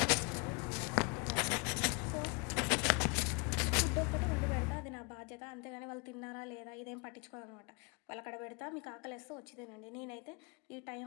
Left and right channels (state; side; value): quieter; right; 32.0 dB